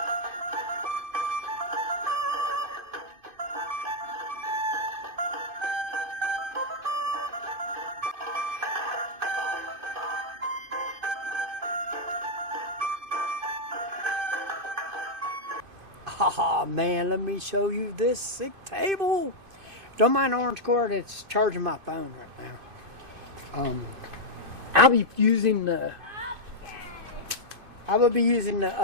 Haha, man, let me show you this sick table. Don't mind the orange cord, it's charging my phone right now. I'll be using the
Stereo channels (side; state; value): left; late; 2.5 ms